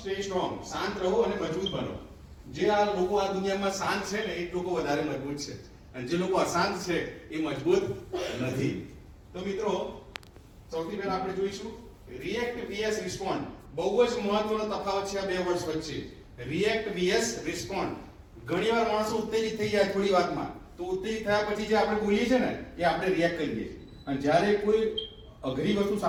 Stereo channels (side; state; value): both; identical; correlation 1.00